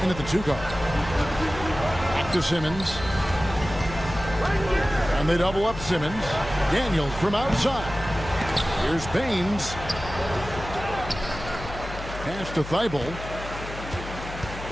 in at the 2 guard. Back to Simmons. And they double up Simmons. Daniels from outside. Here's Baines. Pass to Thybulle.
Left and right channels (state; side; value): noise; left; hum, 11 dB below the sound